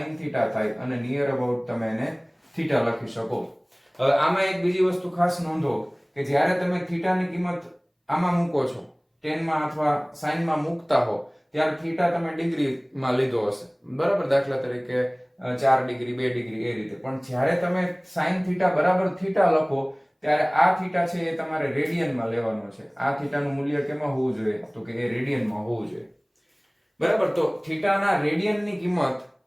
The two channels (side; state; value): both; identical; correlation 1.00